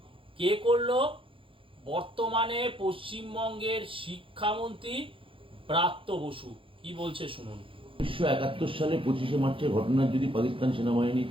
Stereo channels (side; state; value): left; late; 0.25 ms